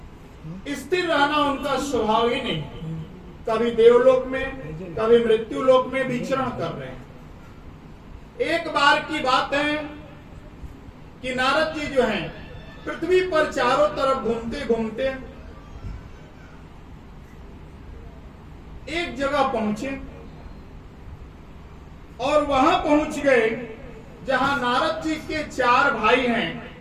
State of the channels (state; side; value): identical; both; correlation 1.00